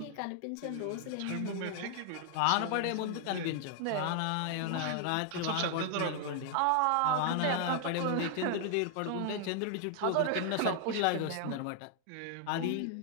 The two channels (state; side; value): different; both; correlation 0.00